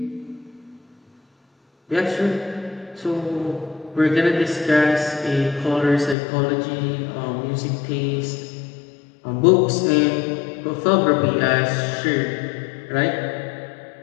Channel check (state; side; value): drops out; right; at 6.2 s